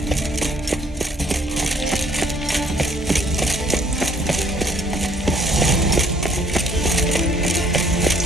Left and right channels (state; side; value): normal; both; correlation 0.62